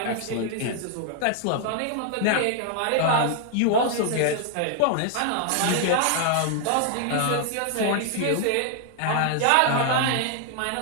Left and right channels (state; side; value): different; both; correlation 0.00